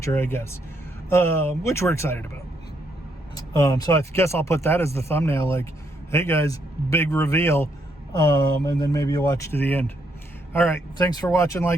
I guess, which we're excited about. So I guess I'll put that as the thumbnail, like, hey guys, big reveal. And then maybe you'll watch to the end. All right, thanks for watching,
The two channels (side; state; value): both; normal; correlation 0.74